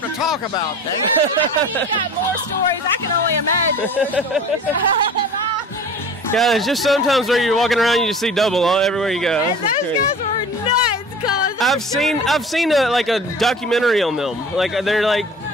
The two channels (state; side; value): normal; both; correlation 0.40